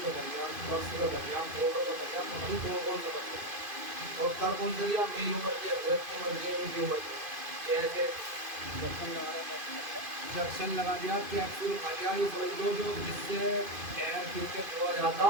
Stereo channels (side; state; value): left; late; 2.5 ms